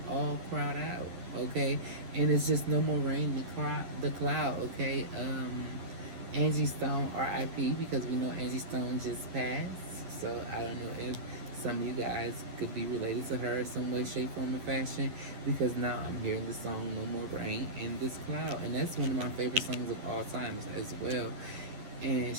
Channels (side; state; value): left; late; 10 ms